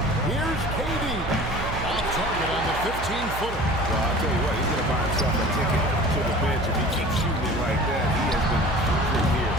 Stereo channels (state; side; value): noise; right; hum, 8 dB below the sound